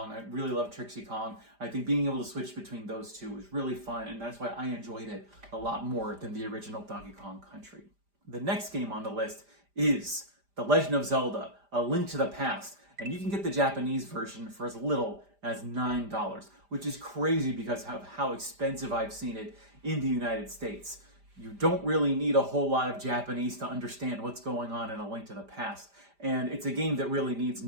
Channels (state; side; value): late; left; 5.0 ms